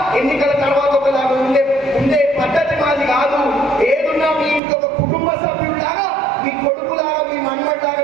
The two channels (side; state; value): left; drops out; at 4.6 s